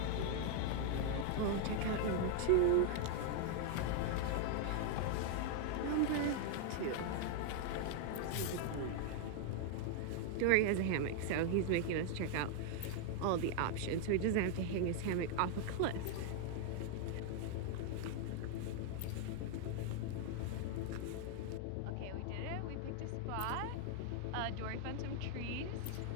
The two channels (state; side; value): different; both; correlation 0.00